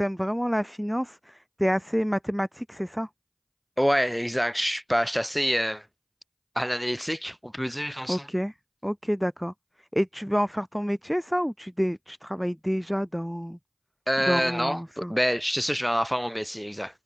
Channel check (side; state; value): both; identical; correlation 1.00